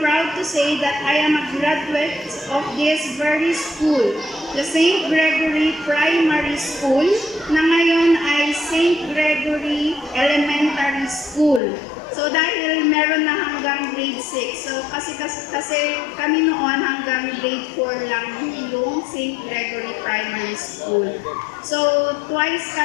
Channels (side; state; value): right; drops out; at 11.6 s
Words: to say that I am a graduate of this very school, the St. Gregory Primary School, na ngayon ay St. Gregory Elementary School. So dahil meron na hanggang grade 6, so kasi kami noon hanggang grade 4 lang yung St. Gregory Primary School. So twice